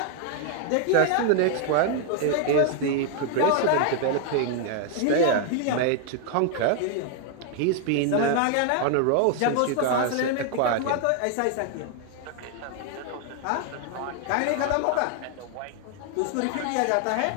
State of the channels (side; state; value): both; different; correlation 0.00